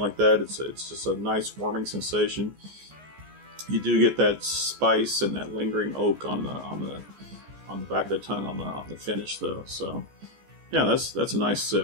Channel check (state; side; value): late; left; 14 ms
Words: that. It's just a nice warming sensation. You do get that spice and that lingering oak on the back of the tongue on the finish though. So yeah, that's a nice